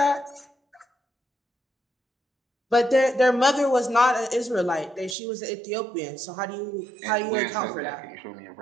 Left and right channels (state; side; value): drops out; left; at 5.2 s